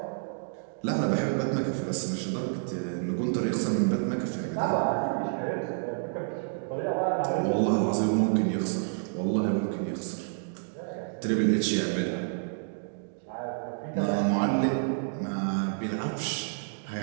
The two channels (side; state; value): left; silent; digital silence